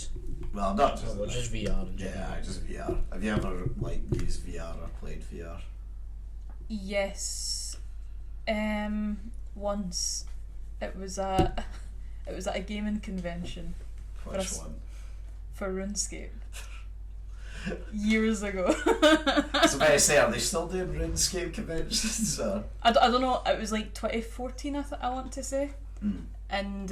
Well, not just Well, that. just VR in general. Yeah, just VR. Have you ever like used VR or played VR? Yes. Once it was at a gaming convention Which us. one? for RuneScape. Years ago. So I say, are they still doing RuneScape conventions? Or? I don't know, it was like 2014 I want to say. Mm. And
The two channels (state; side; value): identical; both; correlation 1.00